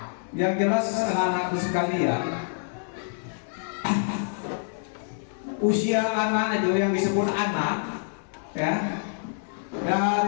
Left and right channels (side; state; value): right; silent; digital silence